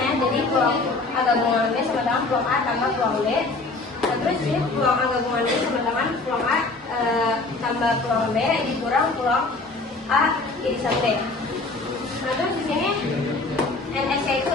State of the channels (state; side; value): quieter; right; 3.4 dB